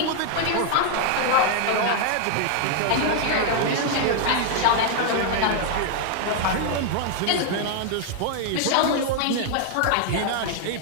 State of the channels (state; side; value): different; both; correlation 0.00